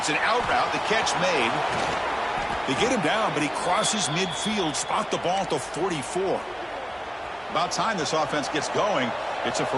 an out route, the catch made. They get him down, but he crosses midfield, spot the ball at the 44. About time this offense gets going. It's a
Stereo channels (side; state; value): both; identical; correlation 1.00